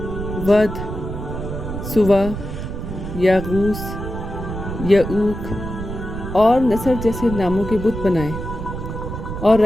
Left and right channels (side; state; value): right; noise; rumble, 7 dB below the sound